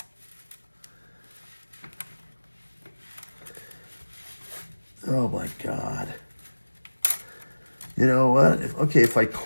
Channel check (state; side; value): inverted; both; correlation -1.00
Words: Oh my God. You know what? If I